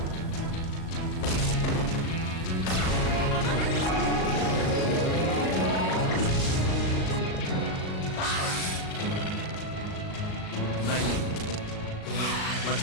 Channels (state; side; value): late; right; 38 ms